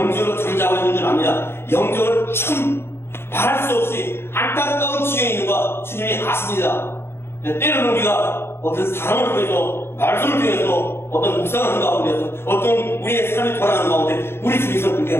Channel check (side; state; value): right; late; 0.12 ms